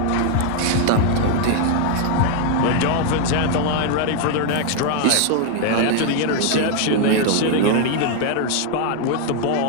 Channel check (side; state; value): both; different; correlation 0.00